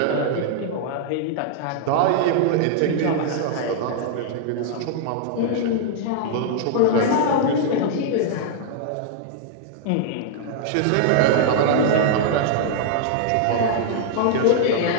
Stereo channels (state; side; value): different; both; correlation -0.01